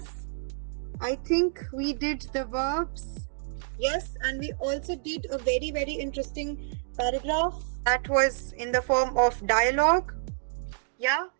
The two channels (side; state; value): left; silent; digital silence